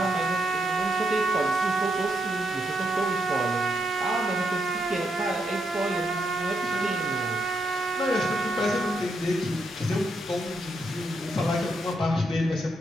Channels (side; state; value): both; normal; correlation 0.79